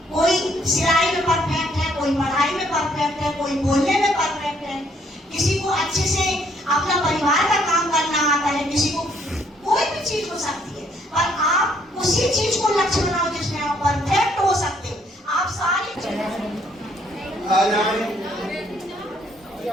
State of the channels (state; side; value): normal; both; correlation 0.67